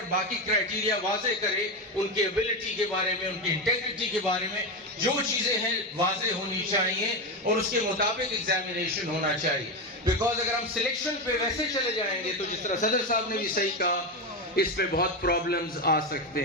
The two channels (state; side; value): normal; both; correlation 0.13